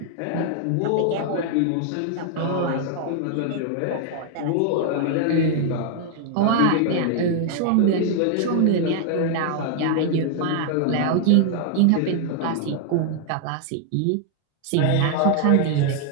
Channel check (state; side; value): different; both; correlation 0.00